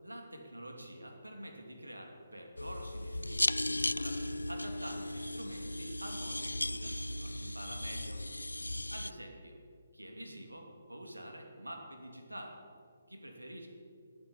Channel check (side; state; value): both; inverted; correlation -0.97